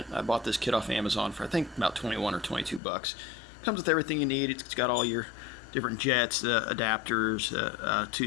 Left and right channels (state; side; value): drops out; right; at 2.8 s